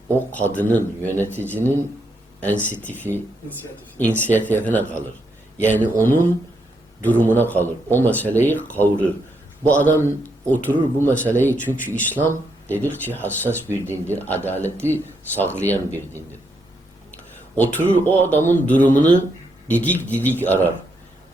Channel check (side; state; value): both; normal; correlation 0.78